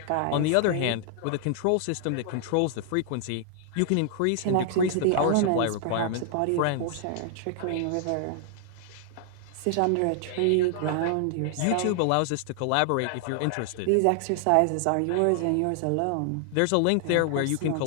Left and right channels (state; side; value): different; both; correlation 0.00